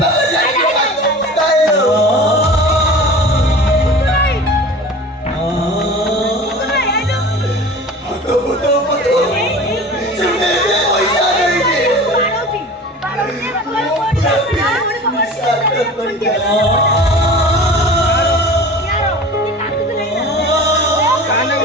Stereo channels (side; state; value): both; normal; correlation 0.38